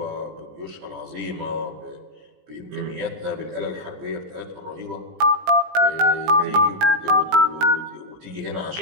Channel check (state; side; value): late; left; 17 ms